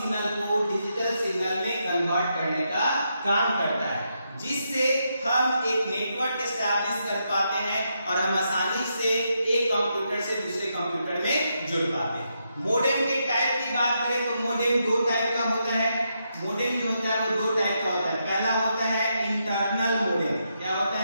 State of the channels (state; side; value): inverted; both; correlation -0.82